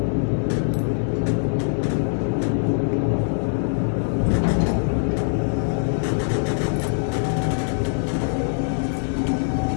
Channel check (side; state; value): right; silent; digital silence